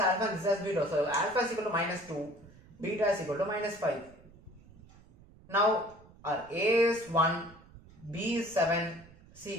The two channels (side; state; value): right; noise; rumble, 24 dB below the sound